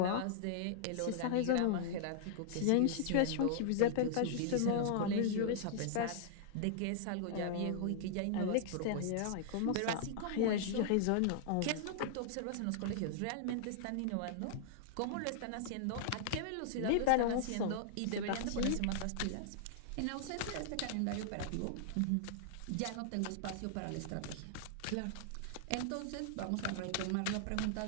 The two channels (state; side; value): different; both; correlation -0.01